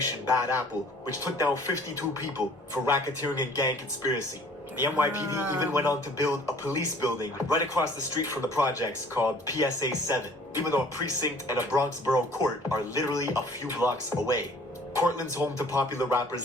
Bad Apple, which took down 52 people for racketeering and gang conspiracy. The NYPD even went on to build a police building right across the street from the projects called PSA 7, even though a precinct and a Bronx borough court are literally a few blocks away. Cortland's home to popular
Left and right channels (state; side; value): normal; both; correlation 0.53